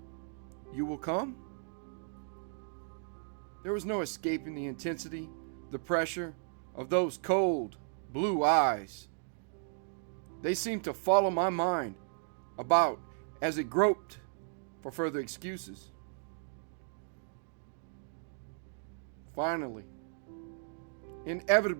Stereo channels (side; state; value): left; silent; digital silence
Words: You will come? There was no escaping the intensity, the pressure of those cold, blue eyes. They seemed to follow my mind about as it groped for further excuses. Finally,